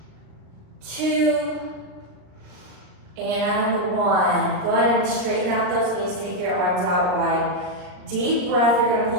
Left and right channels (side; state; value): left; late; 39 ms